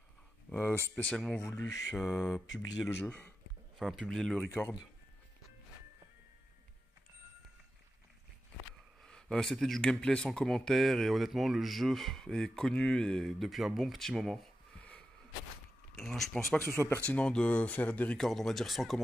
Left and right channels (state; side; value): normal; both; correlation 0.90